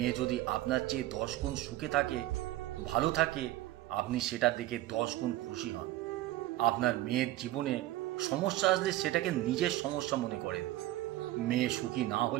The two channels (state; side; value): quieter; left; 15.6 dB